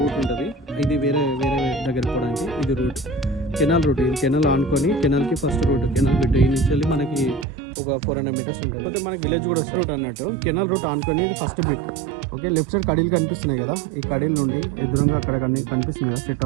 రూట్ ఉంటుంది. ఇది వేరే దగ్గర పోవడానికి ఇది రూట్, కెనాల్ రూట్. ఇది కెనాల్ ఆనుకొని కెనాల్కి ఫస్ట్ రూట్, కెనాల్ బిట్ ఈ నుంచి వెళ్ళి మనకి ఒక 400 మీటర్స్ ఉంటుంది. అయితే మనకి విలేజ్ కూడా వస్తుంది రూట్ అన్నట్టు. కెనాల్ రూట్ ఆనుకొని ఇది first bit. Okay, left side కడీలు కనిపిస్తున్నాయి కదా, ఈ కడీల నుండి ఎదురుగా అక్కడ కనిపిస్తుంది కదా సెట్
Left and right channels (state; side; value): drops out; left; at 7.5 s